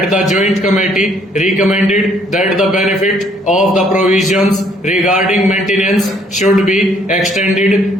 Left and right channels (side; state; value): both; normal; correlation 0.65